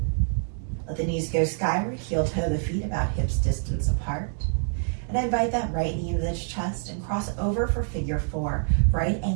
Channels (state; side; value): silent; left; 61 dB below the other